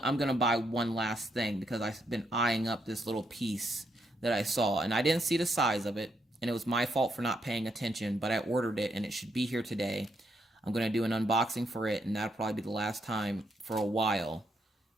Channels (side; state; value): both; normal; correlation 0.77